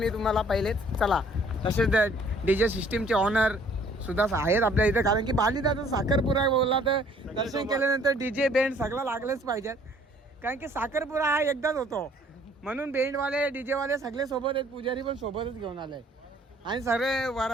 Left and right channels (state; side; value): normal; both; correlation 0.58